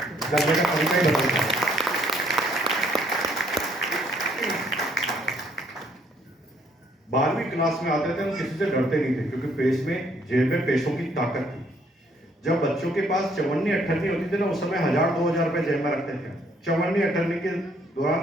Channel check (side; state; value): both; normal; correlation 0.66